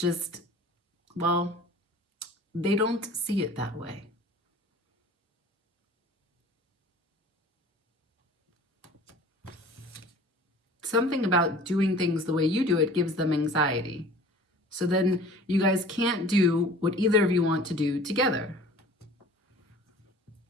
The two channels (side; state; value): both; normal; correlation 0.46